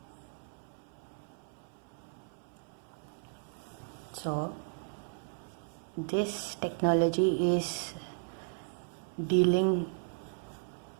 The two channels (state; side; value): silent; left; 54 dB below the other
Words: So this technology is dealing